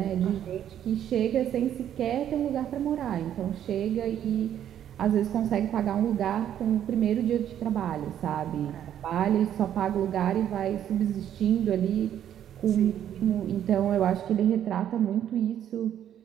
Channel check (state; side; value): quieter; left; 10.4 dB